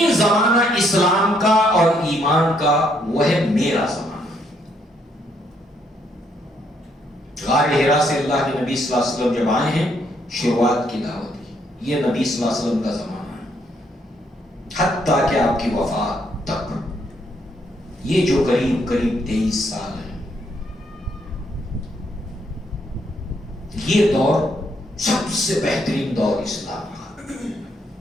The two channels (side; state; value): both; normal; correlation 0.72